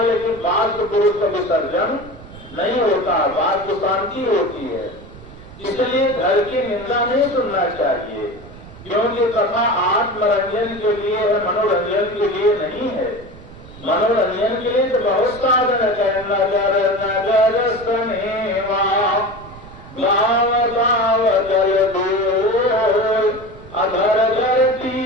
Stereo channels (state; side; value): noise; right; rumble, 18 dB below the sound